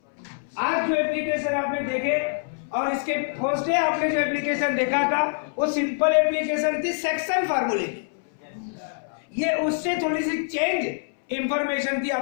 आज जो एप्लीकेशन आपने देखे और इसके फर्स्ट डे आपने जो एप्लीकेशन देखा था वो सिंपल एप्लीकेशन थी सेक्शन फार्मूले की। ये उससे थोड़ी सी चेंज इंफॉर्मेशन थी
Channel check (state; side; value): silent; right; 62 dB below the other